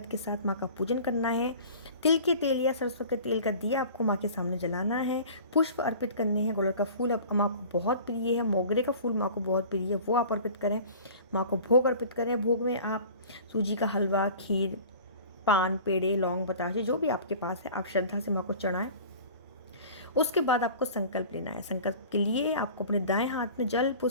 के साथ माँ का पूजन करना है। तिल के तेल या सरसों के तेल का दिया आपको माँ के सामने जलाना है। पुष्प अर्पित करने हैं। गुड़हल का फूल अब माँ को बहुत प्रिय है, मोगरे का फूल माँ को बहुत प्रिय है, वो आप अर्पित करें। माँ को भोग अर्पित करें। भोग में आप सूजी का हलवा, खीर, पान, पेड़े, लौंग, बताशे जो भी आपके पास है आप श्रद्धा से माँ को चढ़ाएं। उसके बाद आपको संकल्प लेना है। संकल्प के लिए आपको अपने दाएं हाथ में जल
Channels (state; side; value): inverted; both; correlation -0.42